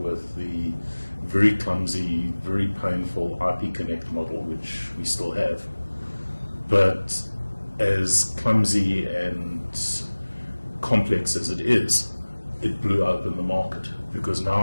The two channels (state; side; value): inverted; both; correlation -1.00